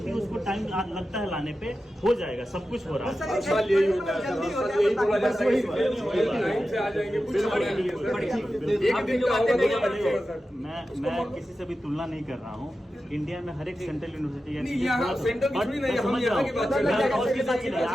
है, उसको टाइम लगता है लाने पे, हो जाएगा, सब कुछ हो रहा है। जल्दी हो जाए मैं किसी से भी तुलना नहीं कर रहा हूँ। इंडिया में हर एक सेंट्रल यूनिवर्सिटी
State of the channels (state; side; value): normal; both; correlation 0.92